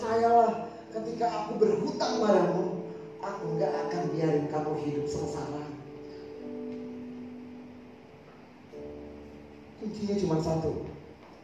ketika aku berhutang padamu, aku gak akan biarin kamu hidup sengsara. Kuncinya cuma satu.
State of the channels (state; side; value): identical; both; correlation 1.00